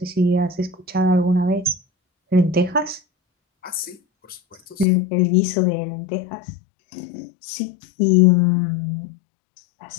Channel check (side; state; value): right; drops out; at 4.9 s